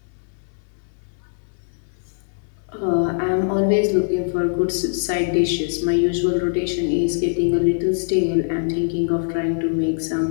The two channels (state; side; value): silent; right; 64 dB below the other